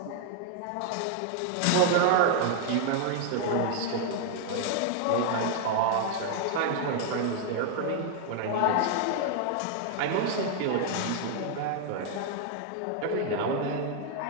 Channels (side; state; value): both; different; correlation 0.00